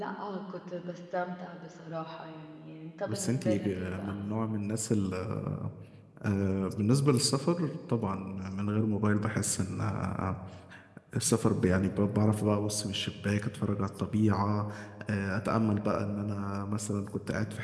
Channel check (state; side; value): identical; both; correlation 1.00